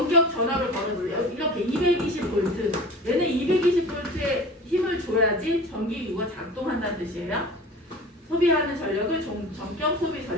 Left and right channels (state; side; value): normal; both; correlation 0.37